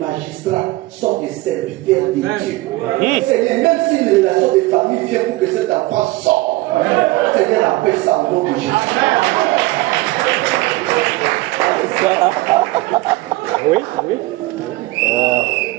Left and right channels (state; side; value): quieter; left; 20.2 dB